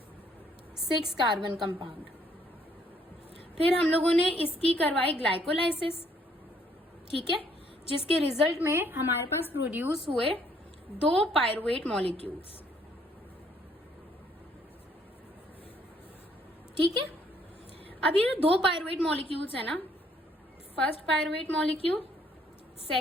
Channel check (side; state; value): both; normal; correlation 0.66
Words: 6 कार्बन कंपाउंड। फिर हम लोगों ने इसकी करवाई ग्लाइकोलाइसिस, ठीक है, जिसके रिजल्ट में हमारे पास प्रोड्यूस हुए 2 पायरुवेट मॉलिक्यूल्स। ठीक है, अब ये 2 पायरुवेट मॉलिक्यूल्स है ना, first pyruvate molecule,